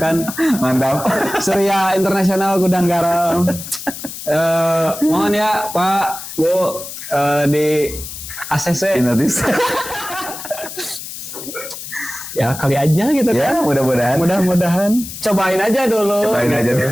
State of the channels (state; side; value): noise; left; hiss, 10 dB below the sound